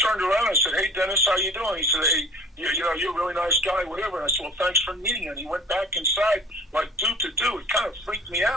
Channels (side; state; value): both; normal; correlation 0.46